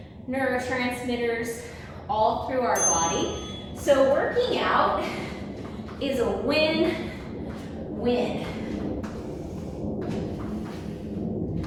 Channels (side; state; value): both; identical; correlation 1.00